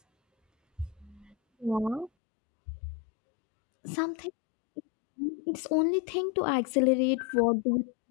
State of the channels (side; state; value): right; drops out; at 2.1 s